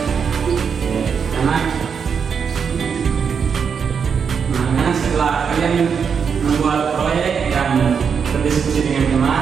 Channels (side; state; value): left; quieter; 6.5 dB